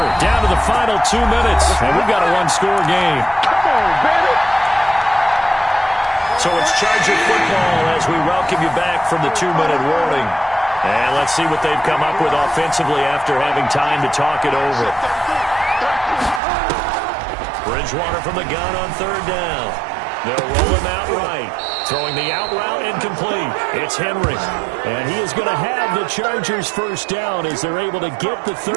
down to the final 2 minutes. And we've got a 1-score game. Come on, baby. So it's Charger football as we welcome you back from the 2-minute warning. And let's see what they've come up with offensively after having time to talk it over. Bridgewater from the gun on 3rd down. They'll roll him out right. Throwing the out route incomplete. It's Henry. And he is going to have the Chargers first down as they're able to get the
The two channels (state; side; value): drops out; left; at 16.4 s